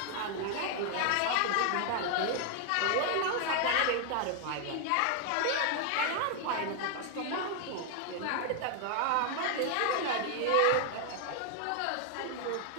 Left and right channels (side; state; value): both; different; correlation 0.00